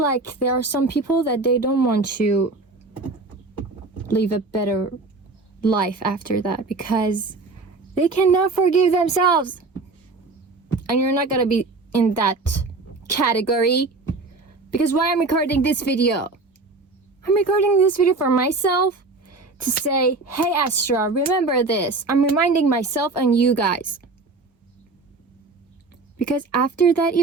there are some people that they don't want to live a better life after that because they cannot forgive themselves. And you're not gonna be in that category. Because why I'm recording this video? I'm recording this video for myself to say, hey Astra, remember this. I'm reminding myself and you guys. Because after that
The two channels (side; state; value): left; quieter; 3.6 dB